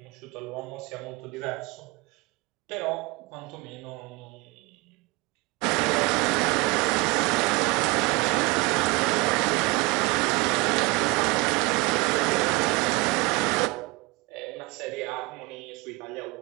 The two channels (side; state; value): left; quieter; 24.3 dB